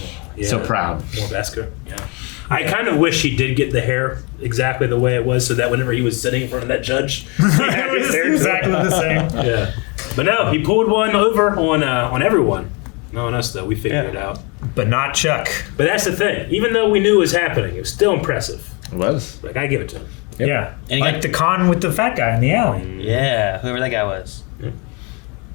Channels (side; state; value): right; quieter; 31.1 dB